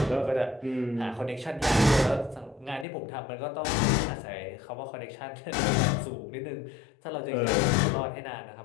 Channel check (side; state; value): right; drops out; at 2.9 s